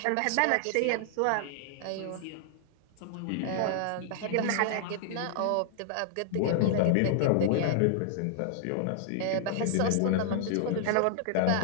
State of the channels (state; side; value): different; both; correlation -0.01